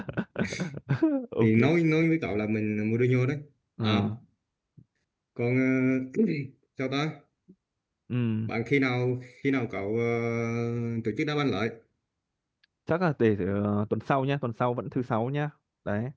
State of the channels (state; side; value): identical; both; correlation 1.00